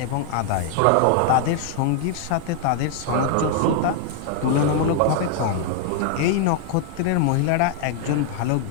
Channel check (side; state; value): both; different; correlation 0.00